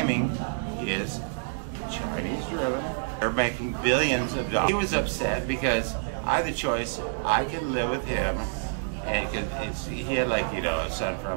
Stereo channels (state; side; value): silent; left; digital silence